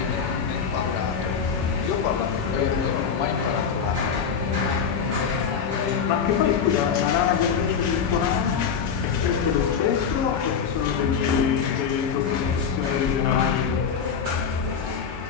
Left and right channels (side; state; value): right; quieter; 6.8 dB